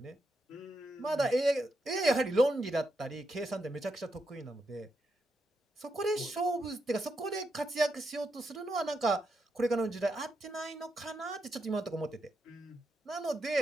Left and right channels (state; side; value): normal; both; correlation 0.83